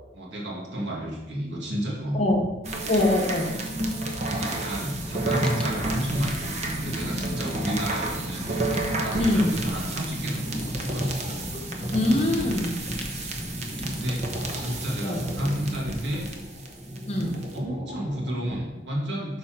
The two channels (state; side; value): normal; both; correlation 0.65